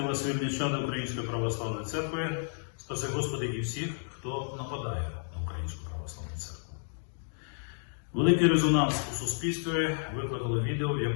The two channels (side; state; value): right; silent; digital silence